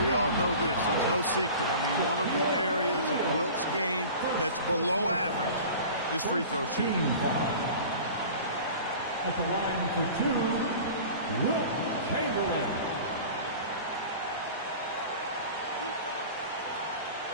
we all know this. It's no secret. I mean, one of the areas of Wilt's game that's below average is free throw shooting. At the line for two, Wilt Chamberlain.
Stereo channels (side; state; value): both; inverted; correlation -0.39